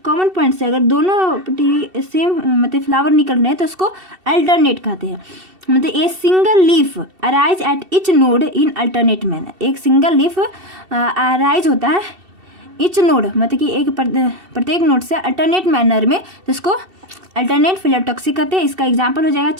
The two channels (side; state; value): left; late; 2.7 ms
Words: कॉमन पॉइंट से अगर दोनों सेम मतलब फ्लावर निकल रहे हैं तो उसको अल्टरनेट कहते हैं। मतलब a single leaf arise at each node in alternate manner, एक सिंगल लीफ अराइज होता है इच नोड, मतलब कि एक प्रत्येक नोड से अल्टरनेट मैनर में, तो इसको अल्टरनेट फाइलोटॉक्सी कहते हैं। इसका एग्जांपल हो जाएगा